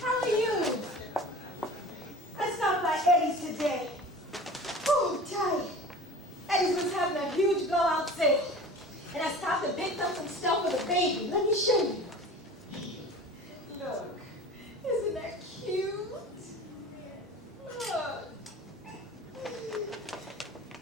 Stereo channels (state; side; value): normal; both; correlation 0.39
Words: are you? I stopped by Eddie's today. Oh, tight. Eddie's was having a huge blowout sale. And I stopped and picked up some stuff for the baby. Let me show you. Look, isn't that cute? Look.